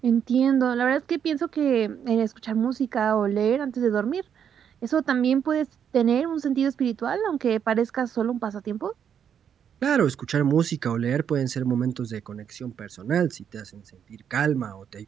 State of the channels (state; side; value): quieter; left; 8.3 dB